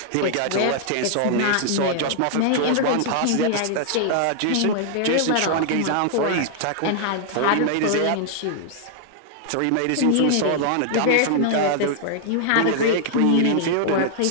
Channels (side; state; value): both; different; correlation -0.01